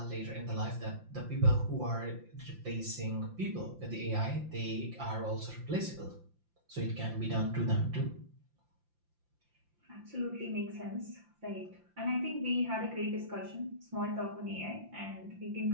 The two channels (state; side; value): late; left; 5.8 ms